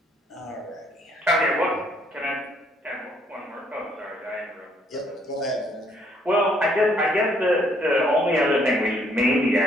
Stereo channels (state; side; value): normal; both; correlation 0.67